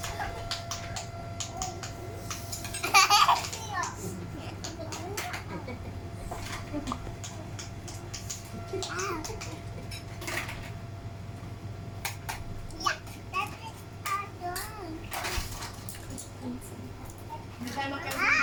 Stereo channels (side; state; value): both; identical; correlation 1.00